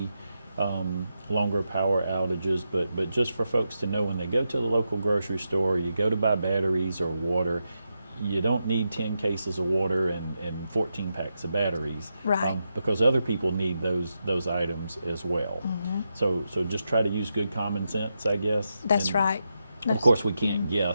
longer power outages, but just for folks to know, when they go to the local grocery store, you go to buy batteries or water, you don't need 10 cases of water and 14 packs of batteries, Right. Because other people need those items as well. So just try to use good common sense, I guess. That's And right. of course, we can't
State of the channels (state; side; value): inverted; both; correlation -0.86